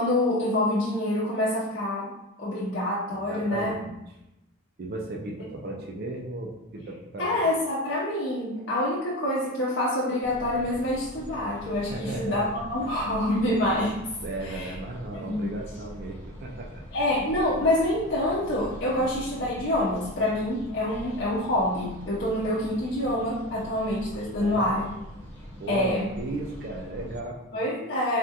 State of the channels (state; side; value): normal; both; correlation 0.25